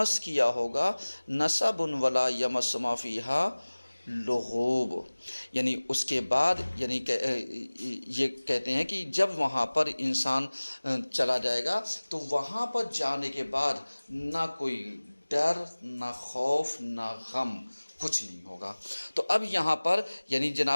किया होगा। नसबुन वला यमस्सुमा फ़ीहा लुगूब यानी उसके बाद यानी ये कहते हैं कि जब वहाँ पर इंसान चला जाएगा तो वहाँ पर जाने के बाद ना कोई डर, ना खौफ, ना गम, कुछ नहीं होगा। तो अब यहाँ पर यानी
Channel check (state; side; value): inverted; both; correlation -1.00